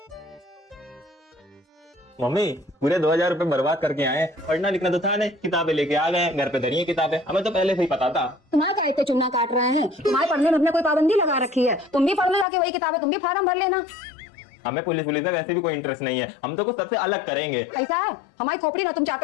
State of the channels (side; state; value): right; drops out; at 12.5 s